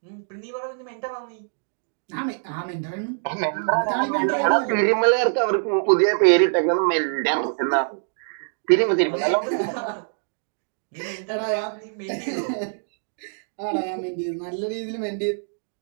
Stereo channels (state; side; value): silent; left; digital silence